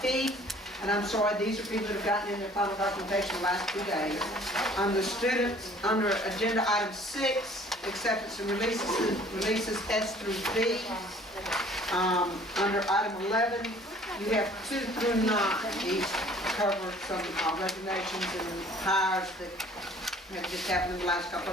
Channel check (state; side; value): normal; both; correlation 0.53